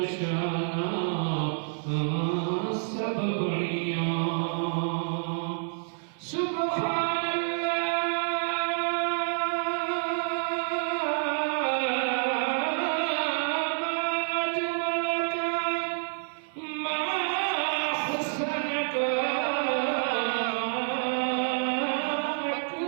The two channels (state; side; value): silent; left; 59 dB below the other